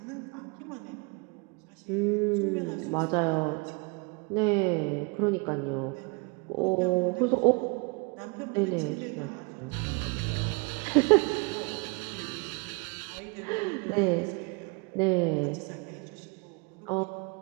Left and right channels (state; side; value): quieter; left; 30.3 dB